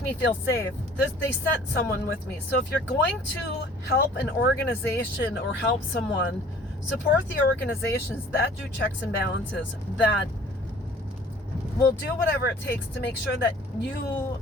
feel safe. They sent someone with me. So if you're going to help an organization or help someone, support the organizations that do checks and balances, that will do whatever it takes to make sure that you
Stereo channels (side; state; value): both; normal; correlation 0.51